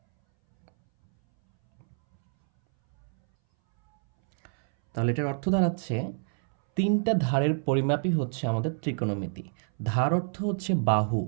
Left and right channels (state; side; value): silent; left; 60 dB below the other